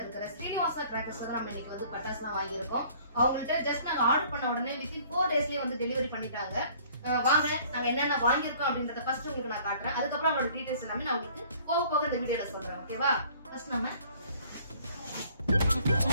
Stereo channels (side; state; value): both; inverted; correlation -0.55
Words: இருக்கிற ஸ்ரீனிவாசா கிராக்கர்ஸ்ல தான் நம்ம இன்னைக்கு வந்து பட்டாசுலாம் வாங்கியிருக்கோம். அவங்கள்ட்ட ஜஸ்ட் நாங்க ஆர்டர் பண்ண உடனே வித்தின் 4 daysலயே வந்து டெலிவரி பண்ணிட்டாங்க. வாங்க நாங்க என்னென்ன வாங்கியிருக்கோம் அப்படின்றத ஃபர்ஸ்ட் உங்களுக்கு நான் காட்டுறேன். அதுக்கப்புறம் அவங்களோட டீடைல்ஸ் எல்லாமே நான் உங்களுக்கு போக போக இந்த வீடியோல சொல்றேன். ஓகேவா? ஃபர்ஸ்ட் நம்ம